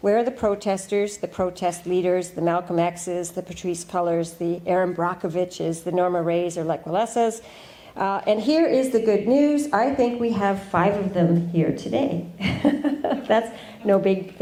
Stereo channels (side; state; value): both; identical; correlation 1.00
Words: Where are the protesters, the protest leaders, the Malcolm X's, the Patrisse Cullors, the Erin Brockoviches, the Norma Rays or Lech Walesas? And here is the good news. I think we have 5 of them here today. That's no big